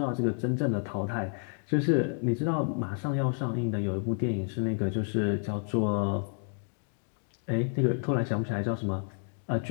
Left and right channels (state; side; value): silent; right; 58 dB below the other